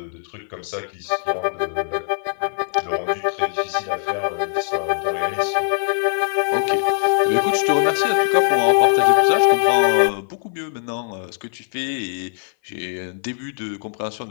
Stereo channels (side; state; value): right; silent; 60 dB below the other